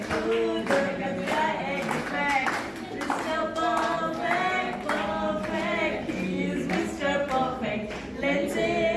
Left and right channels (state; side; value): identical; both; correlation 1.00